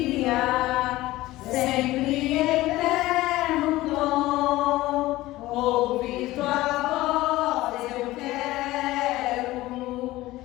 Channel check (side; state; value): right; quieter; 17.5 dB